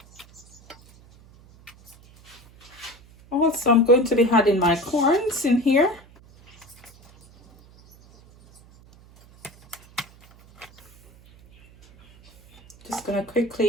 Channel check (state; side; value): noise; right; hum, 26 dB below the sound